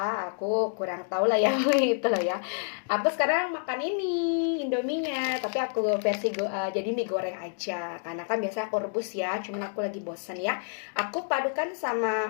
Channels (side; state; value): right; silent; digital silence